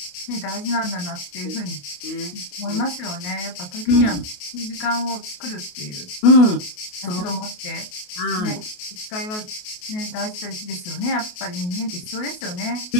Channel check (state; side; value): late; right; 28 ms